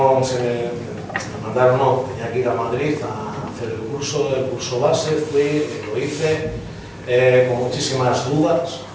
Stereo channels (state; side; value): identical; both; correlation 1.00